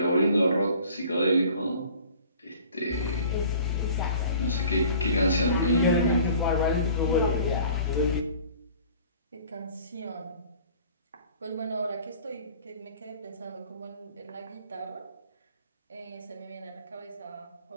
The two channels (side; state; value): both; inverted; correlation -0.48